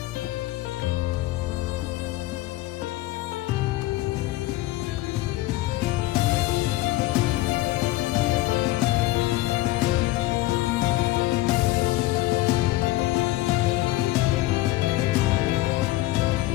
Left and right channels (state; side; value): quieter; right; 17.6 dB